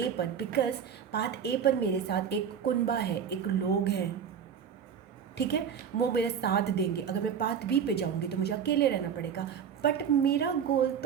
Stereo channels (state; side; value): quieter; left; 7.7 dB